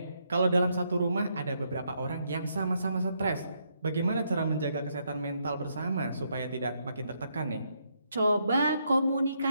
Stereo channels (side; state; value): both; inverted; correlation -0.76